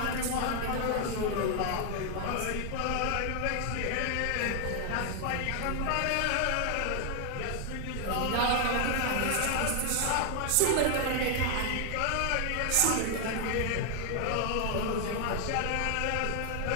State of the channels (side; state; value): both; different; correlation 0.00